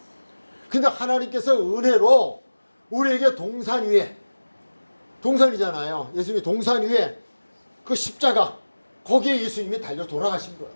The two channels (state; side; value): inverted; both; correlation -1.00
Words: 근데 하나님께서 은혜로 우리에게 동산 위에, 동산이잖아요. 예수님이 동산 위에 그 십자가, 거기에 예수님이 달려 돌아가신 거예요.